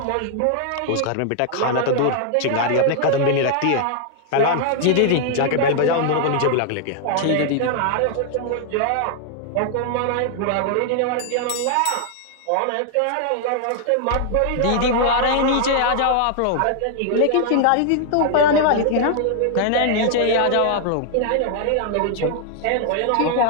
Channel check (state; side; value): different; both; correlation 0.00